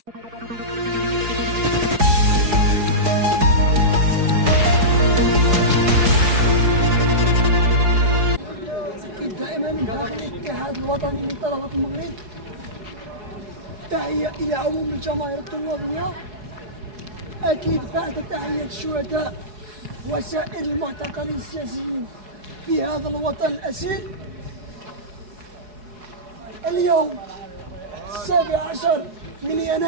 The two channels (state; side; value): late; left; 4.7 ms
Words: دائما من داخل الاتحاد الوطني لطلبة المغرب تحية إلى عموم الجماهير الطلابية، أكيد بعد تحية الشهداء وسائر المعتقلين السياسيين في هذا الوطن الأسير. اليوم 17 من